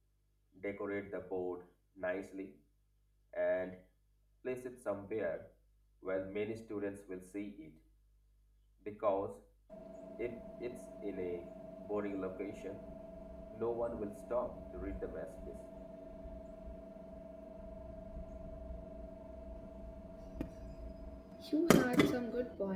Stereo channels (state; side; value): identical; both; correlation 1.00